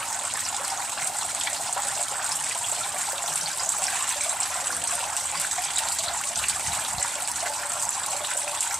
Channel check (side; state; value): both; normal; correlation 0.84